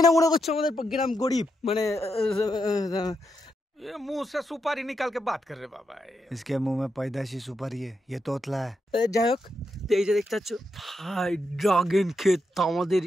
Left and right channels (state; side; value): normal; both; correlation 0.83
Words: না মনে করছো আমাদের গ্রাম গরিব মানে ये मुंह से सुपारी निकाल के बात कर रहे बाबा इसके मुंह में पैदाशी सुपारी है ये तोतला है যাই হোক এই যে দেখতে পাচ্ছ ভাই ড্রাগন ক্ষেত আমাদের